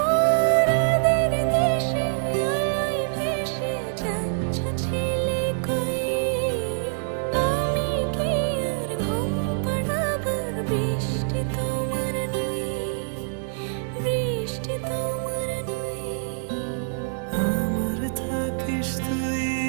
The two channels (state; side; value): silent; left; digital silence